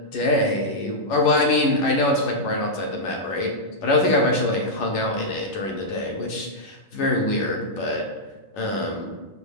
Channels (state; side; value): late; right; 11 ms